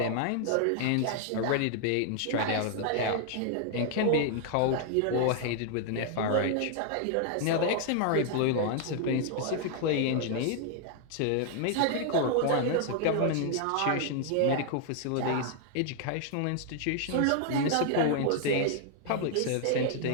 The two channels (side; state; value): both; different; correlation 0.00